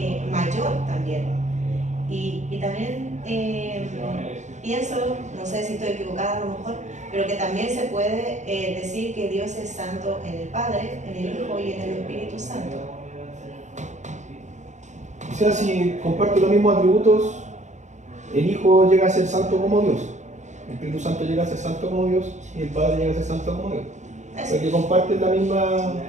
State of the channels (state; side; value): late; left; 0.34 ms